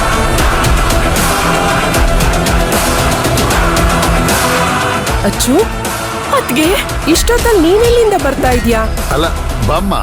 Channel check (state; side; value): identical; both; correlation 1.00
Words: ಅಚ್ಚು, ಅದ್ಗೆ ಇಷ್ಟೊತ್ತಲ್ಲಿ ನೀನೆಲ್ಲಿಂದ ಬರ್ತಾ ಇದೀಯಾ? ಅಲ್ಲ ಬಮ್ಮ.